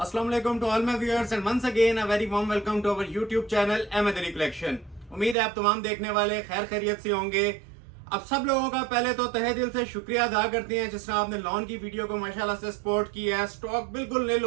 alaikum to all my viewers and once again a very warm welcome to our YouTube channel Ahmedari Collection। उम्मीद है आप तमाम देखने वाले खैर खैरियत से होंगे। अब सब लोगों का पहले तो तहे दिल से शुक्रिया अदा करते हैं जिस तरह आपने लॉन की वीडियो को माशाल्लाह से सपोर्ट किया है। स्टॉक बिल्कुल नील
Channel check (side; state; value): left; drops out; at 5.4 s